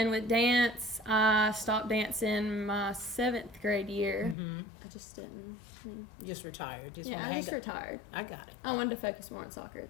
with dance, I stopped dancing my 7th grade year. I just didn't. Just retired. I just retired. I got it. I wanted to focus more on soccer.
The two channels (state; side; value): drops out; right; at 4.4 s